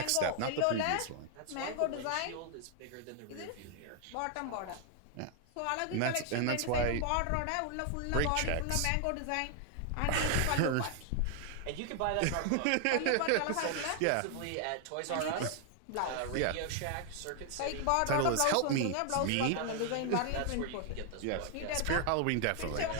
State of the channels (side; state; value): both; different; correlation 0.00